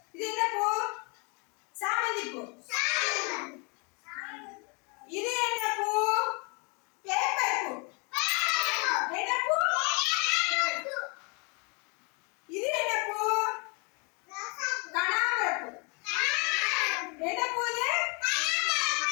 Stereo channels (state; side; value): quieter; right; 33.0 dB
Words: இது என்ன பூ? சாமந்தி பூ. இது என்ன பூ? பேப்பர் பூ. என்ன பூ? இது என்ன பூ? கனகாம்பர பூ. என்ன பூ இது?